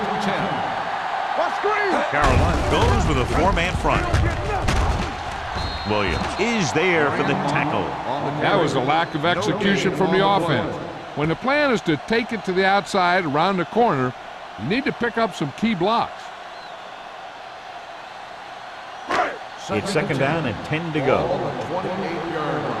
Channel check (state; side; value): identical; both; correlation 1.00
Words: and 10. Watch screen. Carolina goes with a four-man They front. don't get nothing. Williams is there for the tackle. That was a lack of execution from the offense. When the plan is to take it to the outside around the corner, you need to pick up some key blocks. It's second down and 10 to Ball go. on the 28-yard